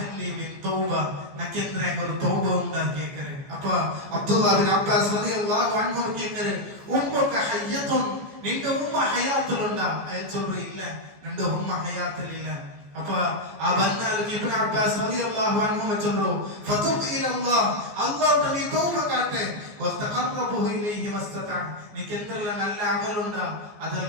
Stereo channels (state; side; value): late; left; 14 ms